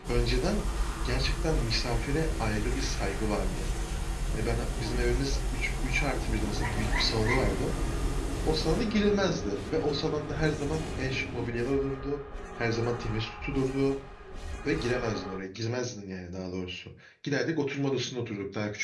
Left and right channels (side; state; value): both; identical; correlation 1.00